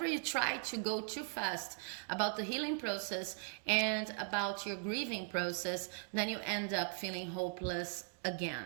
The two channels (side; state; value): left; silent; 52 dB below the other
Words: you try to go too fast about the healing process and about your grieving process, then you end up feeling hopeless